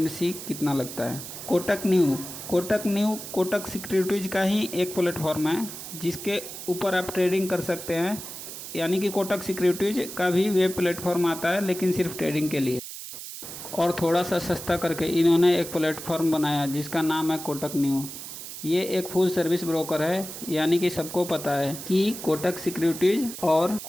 कितना लगता है। कोटक सिक्योरिटीज़ का ही एक प्लेटफॉर्म है जिसके ऊपर आप ट्रेडिंग कर सकते हैं। यानी कि कोटक सिक्योरिटीज़ का भी वेब प्लेटफॉर्म आता है, लेकिन सिर्फ ट्रेडिंग के लिए। और थोड़ा सा सस्ता करके इन्होंने एक प्लेटफॉर्म बनाया जिसका नाम है कोटक न्यू। ये एक फुल सर्विस ब्रोकर है, यानी कि सबको पता है कि कोटक सिक्योरिटीज़ और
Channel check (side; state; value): right; noise; hiss, 10 dB below the sound